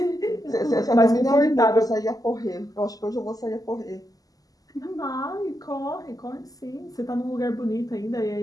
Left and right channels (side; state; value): right; late; 0.17 ms